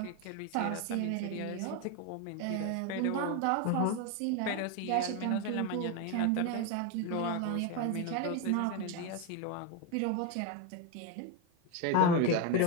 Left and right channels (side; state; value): both; different; correlation 0.02